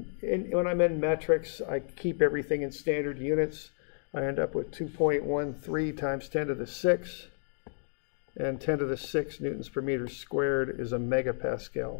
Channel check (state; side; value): silent; right; digital silence